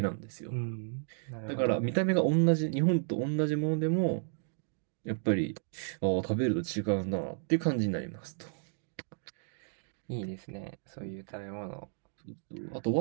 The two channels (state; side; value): silent; left; 56 dB below the other